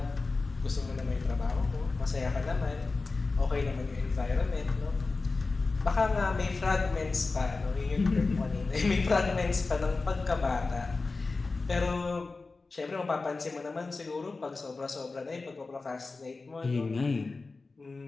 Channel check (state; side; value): quieter; right; 3.8 dB